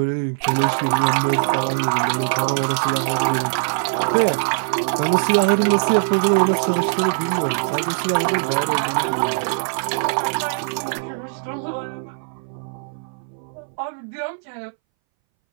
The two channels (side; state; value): left; silent; 63 dB below the other